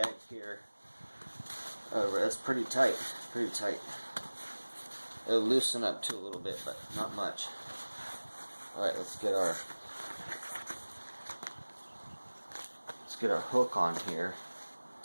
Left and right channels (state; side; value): inverted; both; correlation -1.00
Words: here. That's pretty tight, pretty tight. It'll loosen up too a little bit, but not much. Alright, let's get our hook on here.